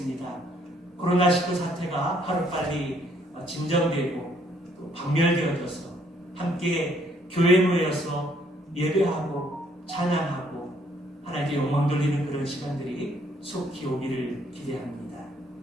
코로나19 사태가 하루빨리 진정되고 또 박멸되어져서 함께 교회에 모여서 예배하고 찬양하고 하나님께 영광 돌리는 그런 시간들이 속히 오기를 기대합니다.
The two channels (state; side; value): normal; both; correlation 0.66